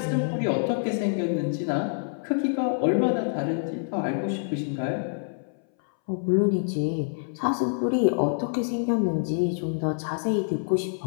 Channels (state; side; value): silent; right; 61 dB below the other